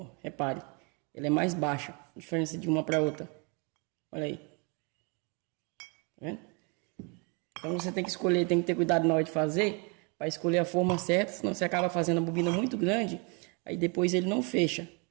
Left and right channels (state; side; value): quieter; left; 33.3 dB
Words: repare, ela é mais baixa, a diferença de uma para outra. Olha aí. Tá vendo? Então você tem que escolher, tem que ter cuidado na hora de fazer, para escolher a forma certa, senão você acaba fazendo a bobina muito grande, aí depois ele não fecha.